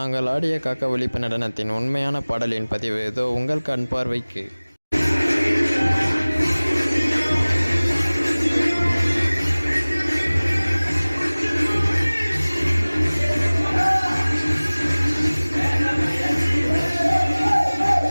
ஆடிய காக்காவளிப்பு நடனத்தின் உண்மையான பாடலின் பதிவு இதோ உங்கள் கண் பார்வைக்கு.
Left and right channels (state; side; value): inverted; both; correlation -1.00